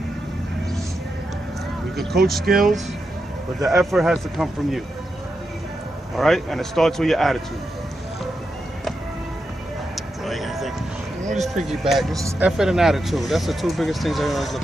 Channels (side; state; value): both; normal; correlation 0.87